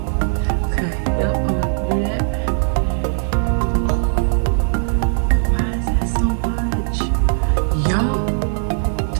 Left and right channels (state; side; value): silent; left; digital silence